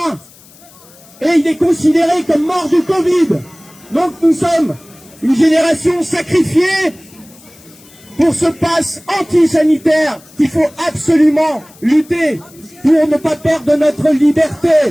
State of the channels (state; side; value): noise; left; hiss, 25 dB below the sound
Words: Et il est considéré comme mort du Covid. Donc nous sommes une génération sacrifiée pour ce pass anti-sanitaire qu'il faut absolument lutter pour ne pas perdre notre liberté.